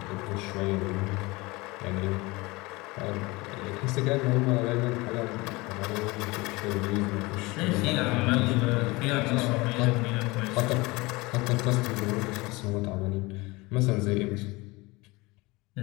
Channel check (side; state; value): right; quieter; 23.2 dB